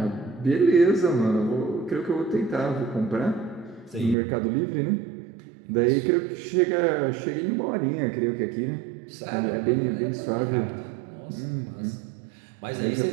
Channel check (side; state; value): left; drops out; at 4.2 s